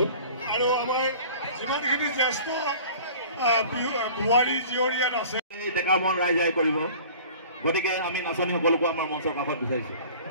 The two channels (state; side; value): inverted; both; correlation -0.45